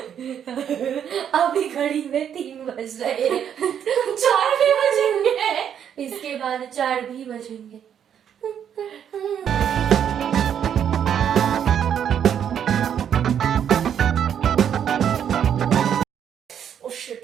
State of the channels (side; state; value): left; quieter; 8.9 dB